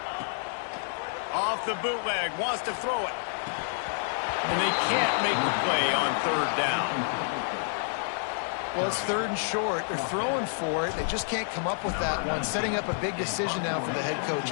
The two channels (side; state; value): right; silent; digital silence